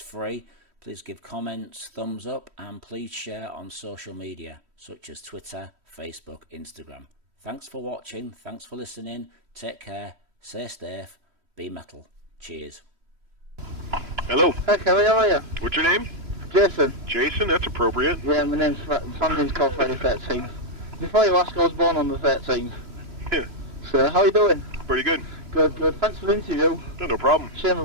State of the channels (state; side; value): late; left; 3.1 ms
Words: Please give comments, thumbs up, and please share on social media such as Twitter, Facebook, Instagram. Thanks for watching, thanks for listening, take care, stay safe, be metal. Cheers. Hello. Hi Kerry, how are you? What's your name? Jason. Jason, that's appropriate. Yeah, my family's called Friday 13th. Before you ask, I was born on the 13th. Yeah. So, how are you doing? Pretty good. Good, good. Thanks for the interview. No problem. Shame